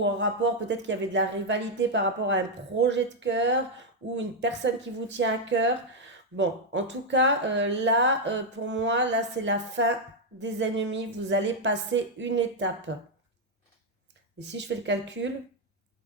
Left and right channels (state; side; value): normal; both; correlation 0.00